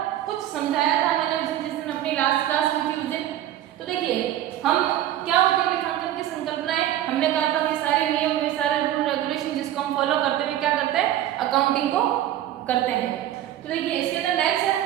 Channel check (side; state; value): left; quieter; 12.5 dB